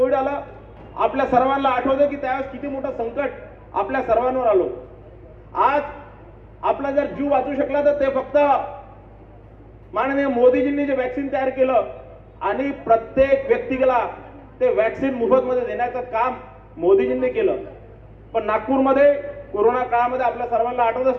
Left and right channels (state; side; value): identical; both; correlation 1.00